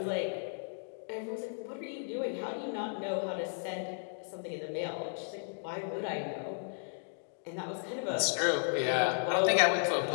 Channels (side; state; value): right; silent; digital silence